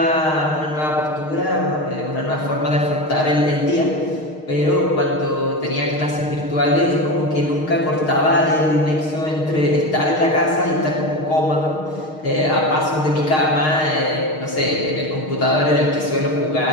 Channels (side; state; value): right; late; 6.5 ms